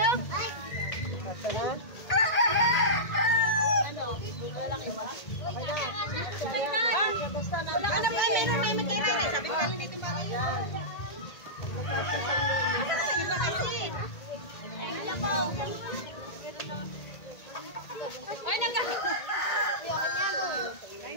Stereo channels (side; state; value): right; late; 1.8 ms